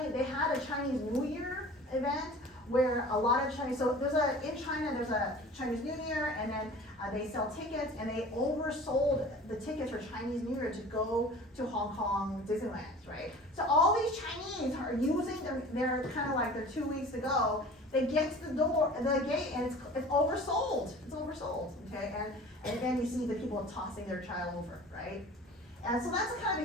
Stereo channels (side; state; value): both; normal; correlation 0.42